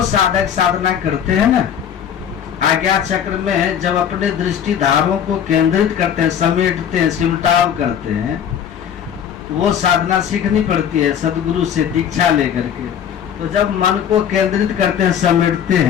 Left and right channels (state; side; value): quieter; right; 8.8 dB